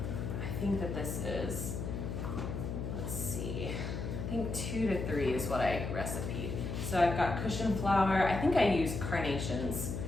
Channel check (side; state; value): left; noise; hum, 4 dB below the sound